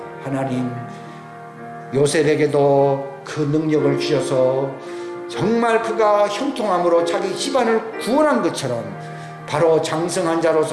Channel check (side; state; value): both; identical; correlation 1.00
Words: 하나님 요셉에게도 그 능력을 주셔서 정말 그가 형통함으로 자기 집안을 구원한 것처럼 바로 장성한